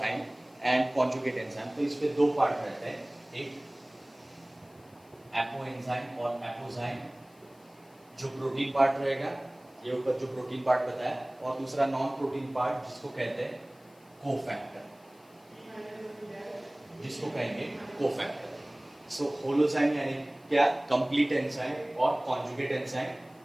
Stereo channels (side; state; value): left; noise; hiss, 30 dB below the sound